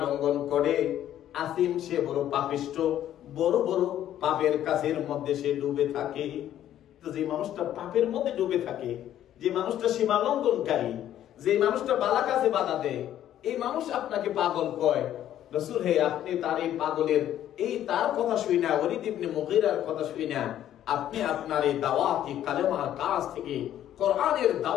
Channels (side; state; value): right; quieter; 11.6 dB